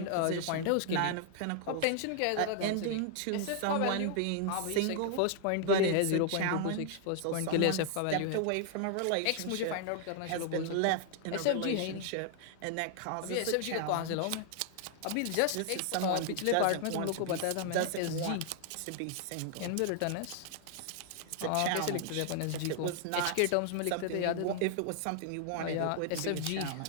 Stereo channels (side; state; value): both; different; correlation 0.00